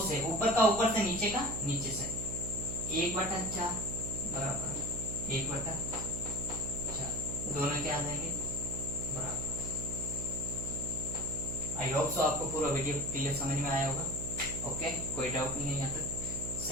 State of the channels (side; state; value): right; noise; hum, 6 dB below the sound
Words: से, ऊपर का ऊपर से, नीचे का नीचे से, 1/4 बराबर 1/4। दोनों क्या आ जाएंगे बराबर। आई होप सो आपको पूरा वीडियो क्लियर समझ में आया होगा। ओके, कोई डाउट नहीं है यहाँ तक।